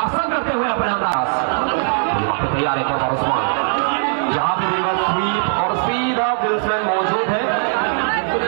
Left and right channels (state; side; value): silent; left; digital silence